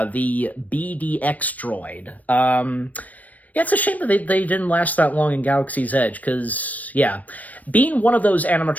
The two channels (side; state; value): right; late; 0.073 ms